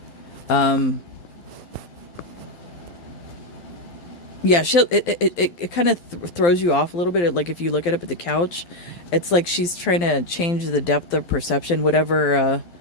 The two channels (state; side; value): late; right; 12 ms